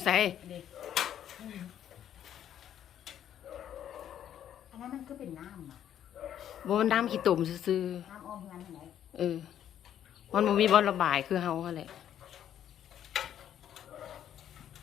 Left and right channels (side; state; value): right; quieter; 10.3 dB